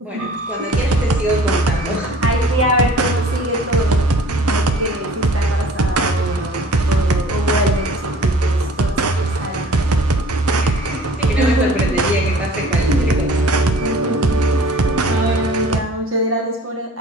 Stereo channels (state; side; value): normal; both; correlation 0.49